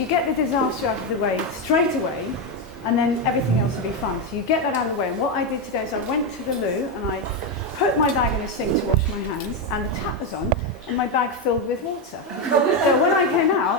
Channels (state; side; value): normal; both; correlation 0.08